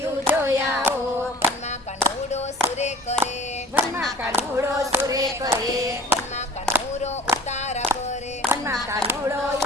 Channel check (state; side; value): normal; both; correlation 0.45